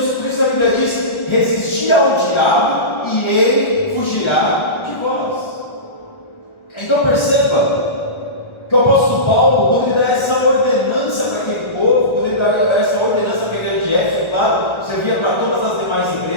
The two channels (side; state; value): right; late; 1.4 ms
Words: a Bíblia diz: resistir ao diabo e ele fugirá de vós. Então perceba que o apóstolo Paulo, quando ele dá essa ordenança para aquele povo, quando ele dá essa ordenança para a igreja de Éfeso, claro, servia para todas as demais